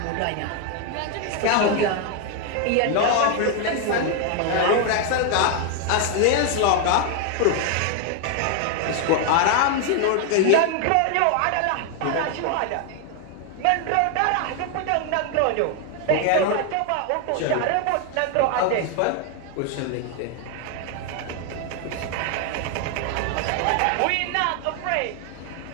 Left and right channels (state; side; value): different; both; correlation 0.00